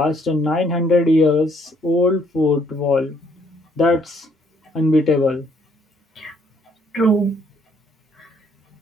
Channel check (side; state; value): both; normal; correlation 0.67